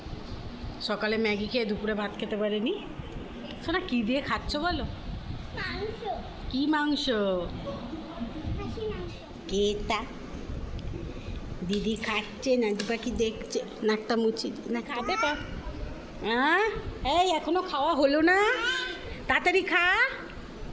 সকালে ম্যাগি খেয়ে দুপুরে ভাত খেতে পারেনি। সোনা কি দিয়ে খাচ্ছ বলো? মাংস, কি মাংস? খাসি মাংস। কেতা দিদি খাচ্ছে, নাদি পাখি দেখছে, নাকটা মুচি না খাবে পা। হ্যাঁ, এই এখনো খাওয়া হলো না, তাড়াতাড়ি খা।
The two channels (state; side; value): identical; both; correlation 1.00